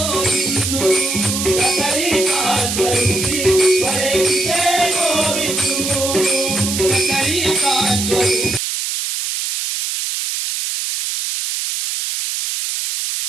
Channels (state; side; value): noise; right; hiss, 2 dB below the sound